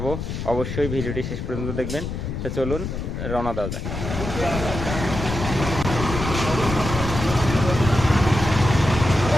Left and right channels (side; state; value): left; noise; rumble, 5 dB below the sound